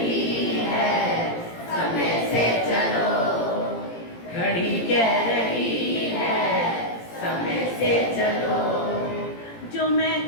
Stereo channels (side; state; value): right; late; 17 ms